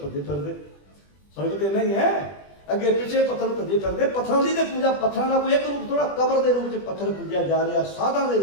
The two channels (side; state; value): right; late; 20 ms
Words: भजे फिरते। फर्क तो नहीं है, अगे पिछे पत्थर भजे फिरते। पत्थरों की पूजा, पत्थरों का कोई एक रूप थोड़ा, कबर के रूप में पत्थर पूजा जा रहा, साधा के